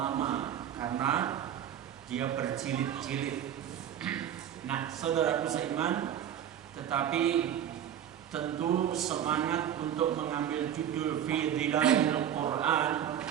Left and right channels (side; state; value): left; quieter; 10.0 dB